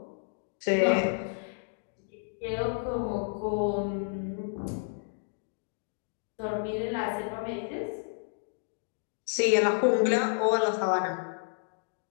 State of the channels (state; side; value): silent; right; digital silence